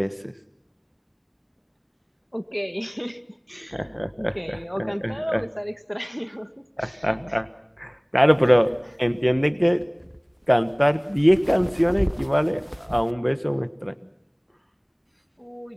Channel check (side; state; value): both; identical; correlation 1.00